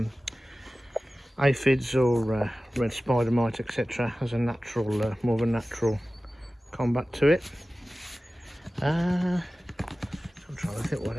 aphids or red spider mite, etc., as a natural, more of a natural combat to it. I'm trying to think what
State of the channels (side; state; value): both; normal; correlation 0.96